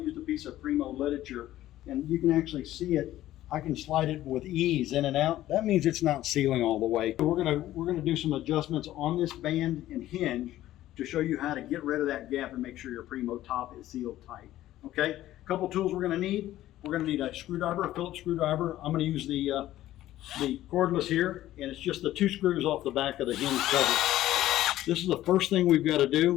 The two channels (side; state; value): right; quieter; 14.2 dB